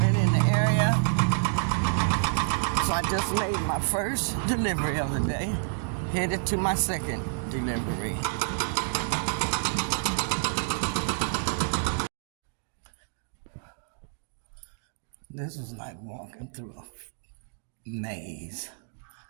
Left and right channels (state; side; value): silent; left; digital silence